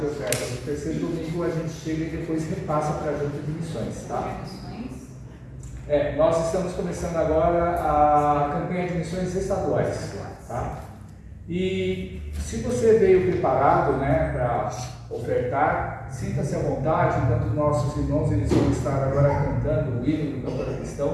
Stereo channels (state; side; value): identical; both; correlation 1.00